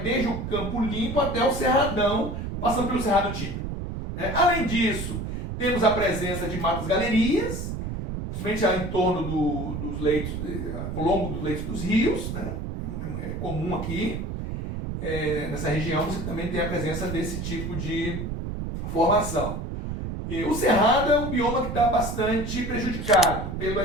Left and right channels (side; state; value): right; noise; rumble, 5 dB below the sound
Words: desde o campo limpo até o cerradão, passando pelo cerrado típico. Além disso, temos a presença de matas galerias, principalmente em torno dos leitos, ao longo dos leitos dos rios, né? É comum aqui. Nessa região você também tem a presença desse tipo de formação. E o cerrado é um bioma que está bastante prejudicado